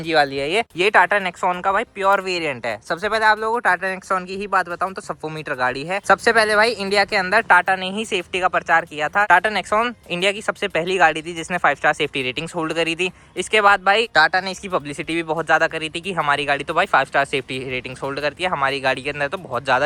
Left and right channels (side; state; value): both; identical; correlation 1.00